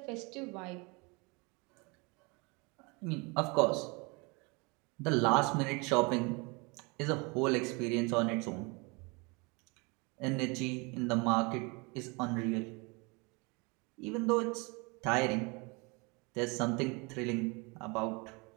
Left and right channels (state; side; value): quieter; left; 28.9 dB